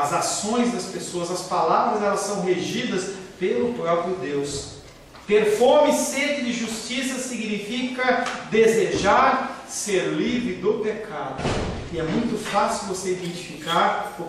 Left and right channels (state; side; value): identical; both; correlation 1.00